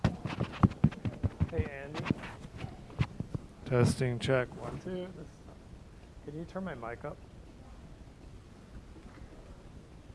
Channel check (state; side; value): identical; both; correlation 1.00